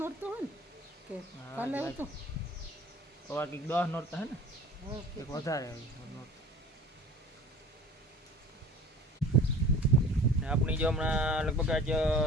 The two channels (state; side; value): normal; both; correlation 0.44